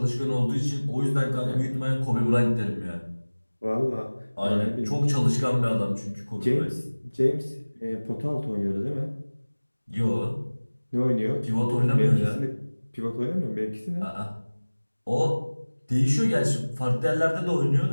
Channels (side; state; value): both; inverted; correlation -1.00